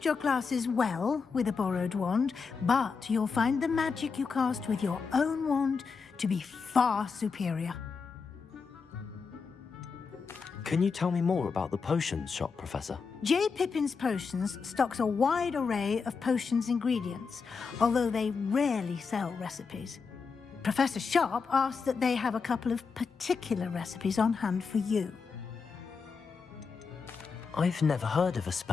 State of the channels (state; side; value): quieter; right; 5.3 dB